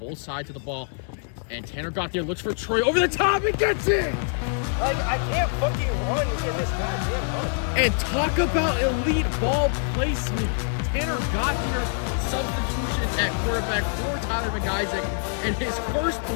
sides of the ball. And Tanner got there, looks for Troy over the top and gets it! Like, I can't fucking run in this goddamn run. And talk about elite ball placement. Tanner got there, substitution at quarterback for Tyler McIsaac, and his first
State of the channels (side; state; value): right; silent; 56 dB below the other